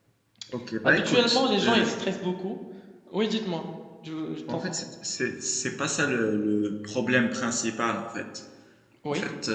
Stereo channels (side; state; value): both; identical; correlation 1.00